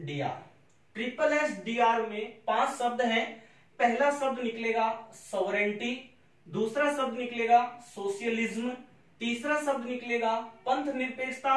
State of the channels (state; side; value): identical; both; correlation 1.00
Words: SSDR में 5 शब्द हैं। पहला शब्द निकलेगा सॉवरेंटी, दूसरा शब्द निकलेगा सोशलिज्म, तीसरा शब्द निकलेगा पंथ